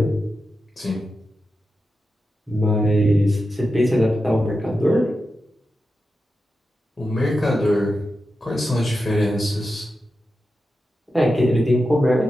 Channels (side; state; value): both; normal; correlation 0.90